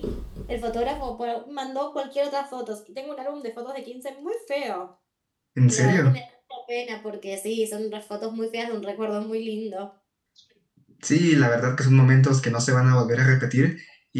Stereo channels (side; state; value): both; identical; correlation 1.00